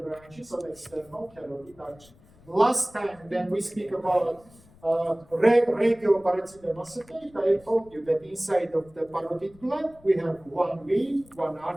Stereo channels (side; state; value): left; noise; rumble, 26 dB below the sound